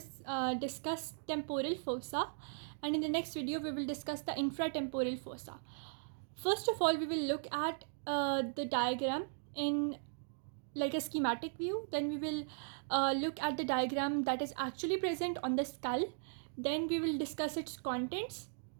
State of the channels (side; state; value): left; silent; digital silence